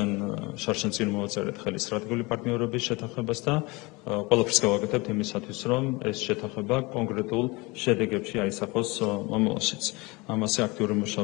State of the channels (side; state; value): right; quieter; 24.9 dB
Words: შარშან წინ მოვაწერეთ ხელი სტრატეგიული პარტნიორობის შეთანხმებას და ყველაფერს გავაკეთებთ იმისათვის, რომ ეს შეთანხმება კონკრეტულ შედეგებში აისახოს მომავალშიც. ამაზე აქტიური